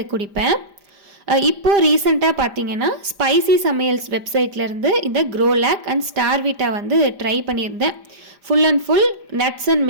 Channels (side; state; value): left; late; 5.0 ms